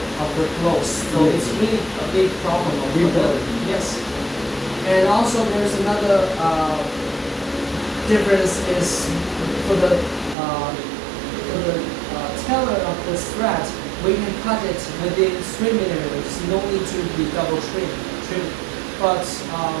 of the clothes, so it's really a big problem. Yes, and also there's another difference is for the tailor of the thread, we can cut it within 3 millimeters. No need to be double trim. But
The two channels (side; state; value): left; drops out; at 10.4 s